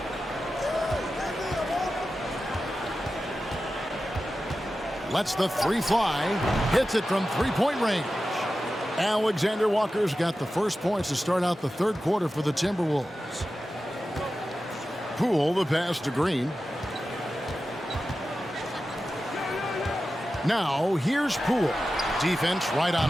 Lets the three fly, hits it from three-point range. Alexander Walker's got the first points to start out the third quarter for the Timberwolves. Poole, the pass to Green. Now, here's Poole. Defense right on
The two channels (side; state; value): both; normal; correlation 0.93